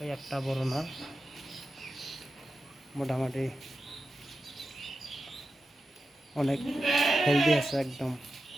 ওই একটা বড় নর মোটামুটি অনেক হেলদি আছে, একদম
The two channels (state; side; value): normal; both; correlation 0.91